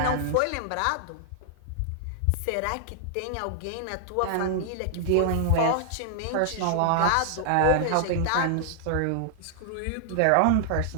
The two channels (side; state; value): both; different; correlation -0.01